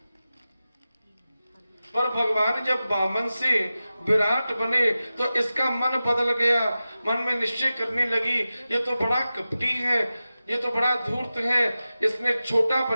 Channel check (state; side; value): inverted; both; correlation -0.94